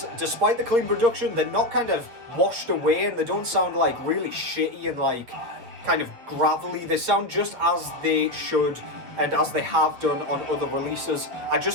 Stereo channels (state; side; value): late; left; 8.3 ms